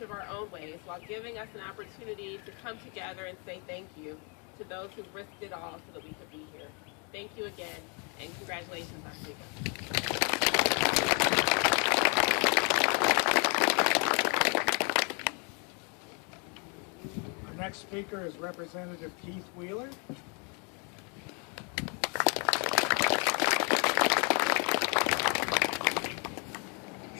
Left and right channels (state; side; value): quieter; right; 35.7 dB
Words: of our own ways while giving us an opportunity to come together and say thank you to those who risked it all so that we could be here. Thank you again, and congratulations, Oswego. Our next speaker is Representative Keith Wheeler.